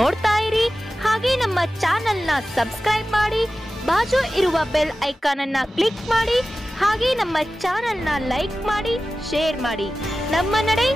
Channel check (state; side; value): normal; both; correlation 0.95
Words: ಇರಿ, ಹಾಗೆ ನಮ್ಮ ಚಾನೆಲ್ ನ ಸಬ್ಸ್ಕ್ರೈಬ್ ಮಾಡಿ, ಬಾಜು ಇರುವ ಬೆಲ್ ಐಕಾನ್ ಅನ್ನ ಕ್ಲಿಕ್ ಮಾಡಿ, ಹಾಗೆ ನಮ್ಮ ಚಾನೆಲ್ ನ ಲೈಕ್ ಮಾಡಿ, ಶೇರ್ ಮಾಡಿ. ನಮ್ಮ ನಡೆ